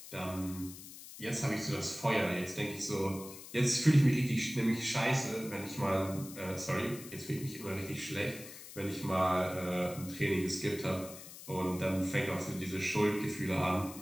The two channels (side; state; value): left; noise; hiss, 14 dB below the sound